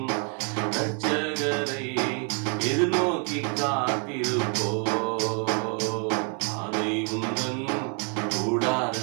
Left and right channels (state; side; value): quieter; left; 38.5 dB